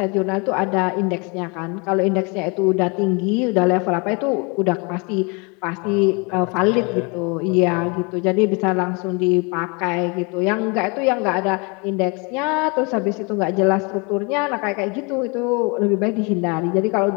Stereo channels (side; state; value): right; quieter; 30.8 dB